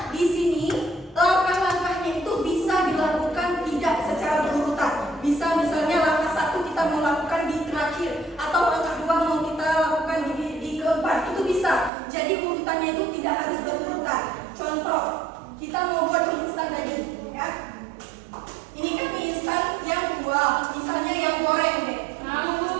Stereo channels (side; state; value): left; drops out; at 11.9 s